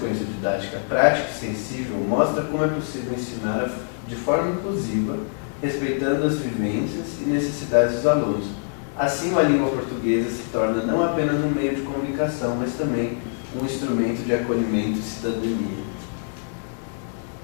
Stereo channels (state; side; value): silent; right; digital silence